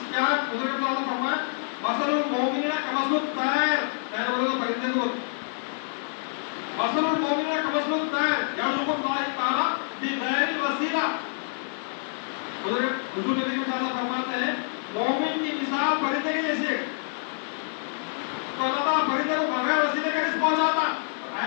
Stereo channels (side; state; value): right; silent; 60 dB below the other